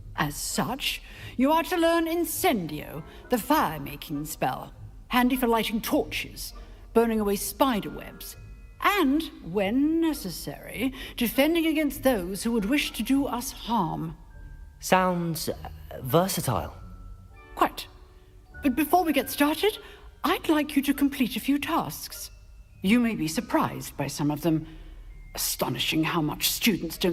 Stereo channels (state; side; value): identical; both; correlation 1.00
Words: As such, you are to learn Incendio, the fire-making spell, handy for lighting torches, burning away spider webs, and, when necessary, defending against those who would wish to do us harm. Sounds versatile. Quite. But before we get started, I'd like you to complete a few tasks. You may be surprised by some of them. Astonishing how much students